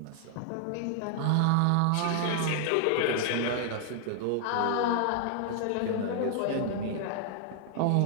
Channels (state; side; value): different; both; correlation 0.00